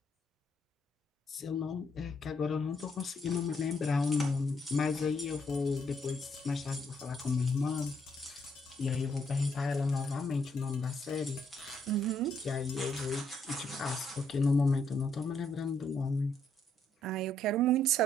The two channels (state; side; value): normal; both; correlation 0.72